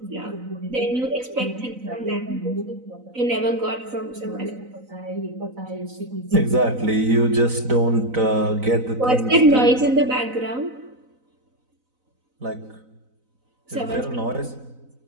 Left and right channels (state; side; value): late; left; 4.0 ms